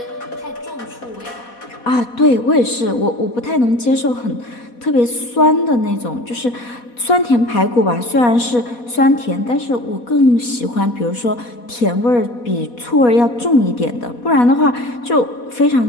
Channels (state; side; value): late; right; 4.2 ms